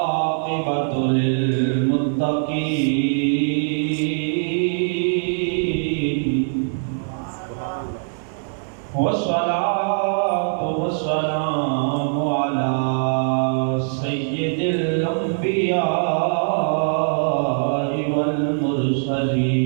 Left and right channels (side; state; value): left; silent; digital silence